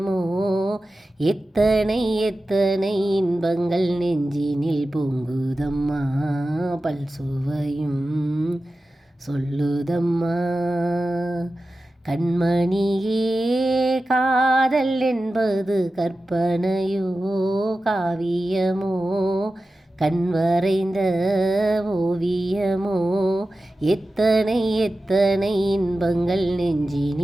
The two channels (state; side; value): normal; both; correlation 0.94